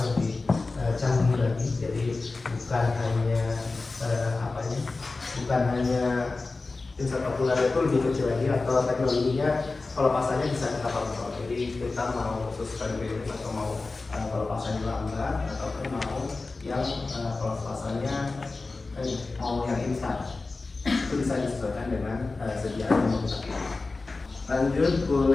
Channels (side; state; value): right; quieter; 3.6 dB